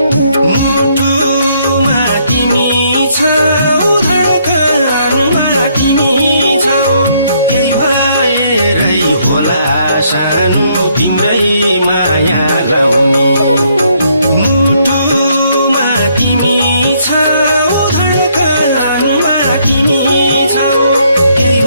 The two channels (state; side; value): inverted; both; correlation -0.70